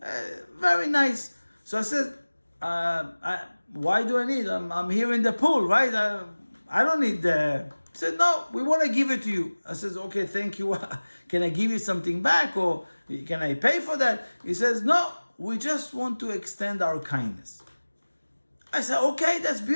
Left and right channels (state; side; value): inverted; both; correlation -1.00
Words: very nice. So I said, why do I need? I'm here in the pool, right? I don't need the. He said, no, we want to give it to you. I said, okay, thank you. Can I give you something back, or can I pay for that? He says, no, we just want to extend our kindness. I said, okay, that's